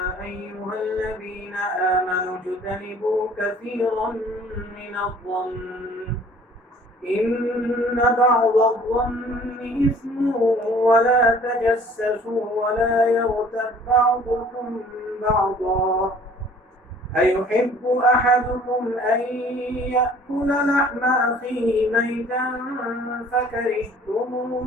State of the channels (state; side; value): normal; both; correlation 0.52